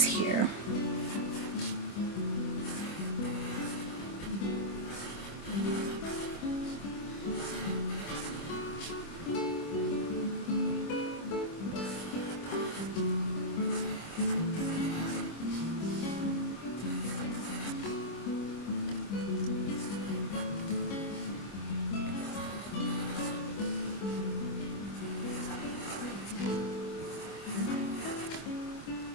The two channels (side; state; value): right; late; 25 ms